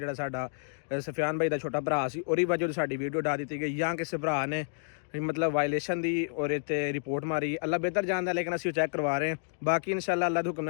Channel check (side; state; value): right; silent; digital silence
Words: ਸਾਡਾ ਸਫਿਆਨ ਭਾਈ ਦਾ ਛੋਟਾ ਭਰਾ ਸੀ ਉਹਦੀ ਵਜ੍ਹਾ ਤੋਂ ਸਾਡੀ ਵੀਡੀਓ ਡਾ ਦਿੱਤੀ ਗਈ ਜਾਂ ਕਿਸੇ ਭਰਾ ਨੇ मतलब वायलेशन दी और इतने रिपोर्ट मारी। अल्लाह बेहतर जानता लेकिन असीं चैक करवा रहे हैं। बाकी इंशाल्लाह अल्लाह दे हुक्म